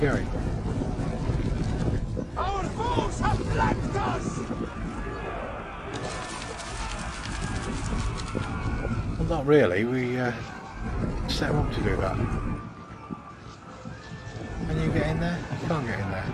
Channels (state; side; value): identical; both; correlation 1.00